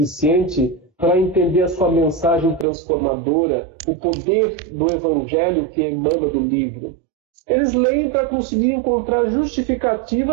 para entender a sua mensagem transformadora, o poder do Evangelho que emana do livro. Eles leem para conseguir encontrar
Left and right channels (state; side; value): drops out; left; at 2.7 s